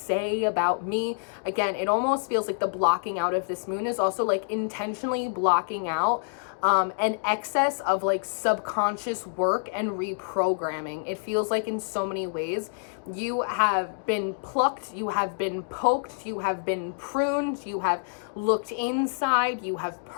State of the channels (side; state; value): right; silent; digital silence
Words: about me? Again, it almost feels like the blocking out of this moon is also like intentionally blocking out an excess of like subconscious work and reprogramming. It feels like in so many ways you have been plucked, you have been poked, you have been pruned, you have looked inside, you have